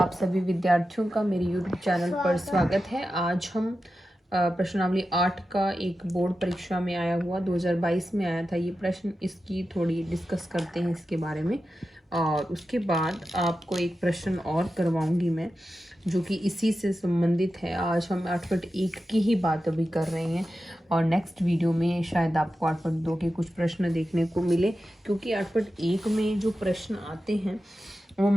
सभी विद्यार्थियों का मेरे YouTube चैनल पर स्वागत है। आज हम प्रश्नावली 8 का एक बोर्ड परीक्षा में आया हुआ 2022 में आया था ये प्रश्न, इसकी थोड़ी डिस्कस करते हैं इसके बारे में। और उसके बाद आपको एक प्रश्न और करवाऊंगी मैं जो कि इसी से संबंधित है। आज हम 8.1 की ही बात अभी कर रहे हैं और नेक्स्ट वीडियो में शायद आपको 8.2 के कुछ प्रश्न देखने को मिले, क्योंकि 8.1 में जो प्रश्न आते हैं वो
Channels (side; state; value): both; normal; correlation 0.92